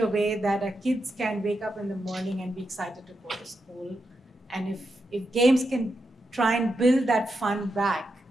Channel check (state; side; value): normal; both; correlation 0.86